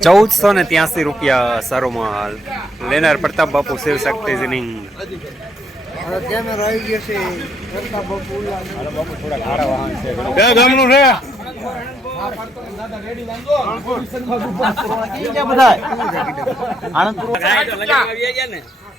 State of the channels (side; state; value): both; normal; correlation 0.73